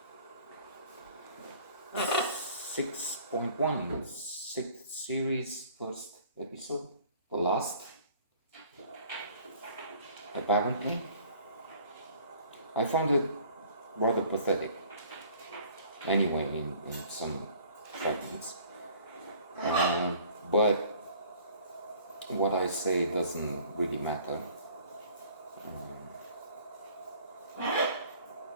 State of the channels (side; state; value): both; inverted; correlation -0.53